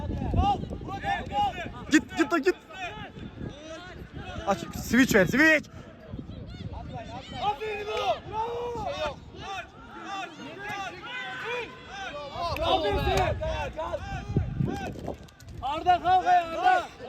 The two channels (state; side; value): identical; both; correlation 1.00